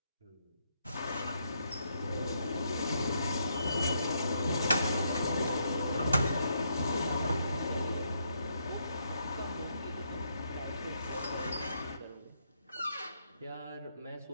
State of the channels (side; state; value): both; inverted; correlation -0.76